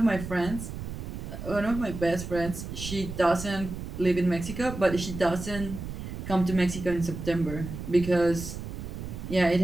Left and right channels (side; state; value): right; noise; rumble, 8 dB below the sound